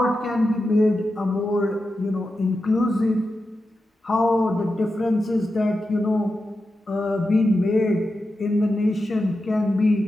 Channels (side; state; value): both; normal; correlation 0.90